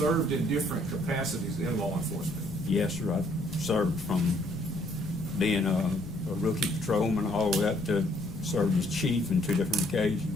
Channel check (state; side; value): noise; left; rumble, 16 dB below the sound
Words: in different capacities in law enforcement? Yes, sir. I've served from being a rookie patrolman all the way up to served as chief on 2 different occasions.